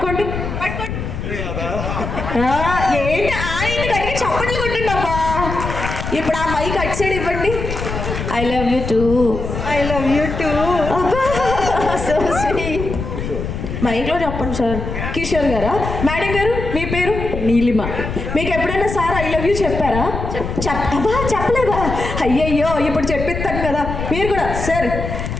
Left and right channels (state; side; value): noise; left; rumble, 5 dB below the sound